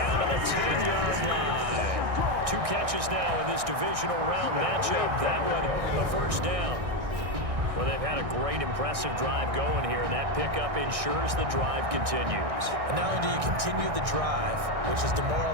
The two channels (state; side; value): late; left; 1.6 ms